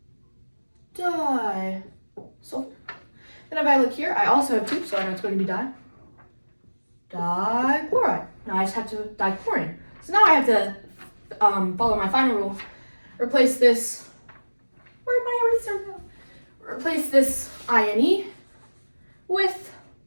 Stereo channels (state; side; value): inverted; both; correlation -1.00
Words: Di sulfur. Then if I look here, I also have 2, so I know it's going to be di. Dichloride. Now I just have to dichlorine. So now I have to follow my final rule. Replace this. Where'd my eraser go? Replace this INE with